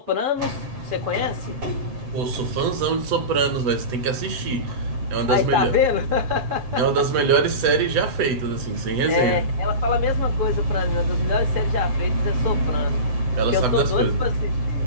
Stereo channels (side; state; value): left; late; 8.0 ms